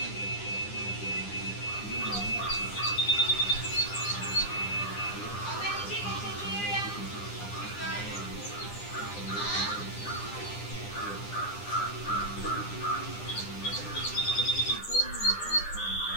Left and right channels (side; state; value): right; late; 9.9 ms